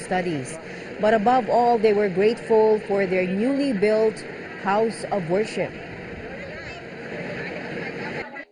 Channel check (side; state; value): both; identical; correlation 1.00